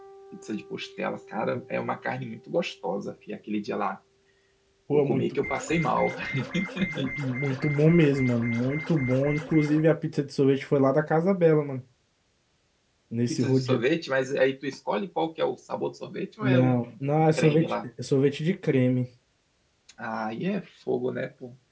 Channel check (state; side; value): identical; both; correlation 1.00